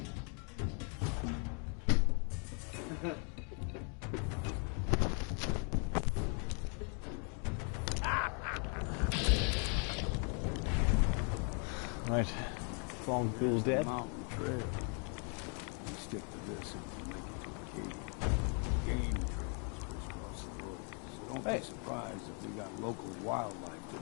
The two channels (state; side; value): quieter; right; 39.4 dB